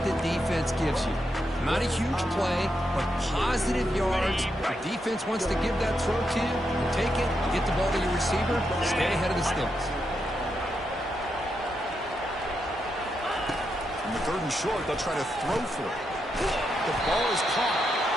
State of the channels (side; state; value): both; normal; correlation 0.83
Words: the defense gives you. Not a huge play, but positive yards. The defense wants to give that throw to you. You take it, get the ball to your receiver, stay ahead of the sticks. In the third and short, they'll try to throw for it. The ball is caught.